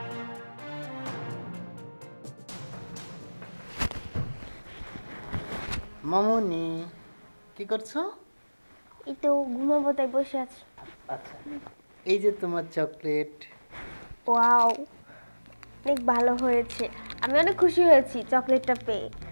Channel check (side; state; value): both; inverted; correlation -1.00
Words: মামনি, কি করছো? এই তো ঘুমাবো তাই বসে আছি। আচ্ছা, এই যে তোমার চকলেট। ওয়াও, অনেক ভালো হয়েছে। আমি অনেক খুশি হয়েছি চকলেটটা পেয়ে।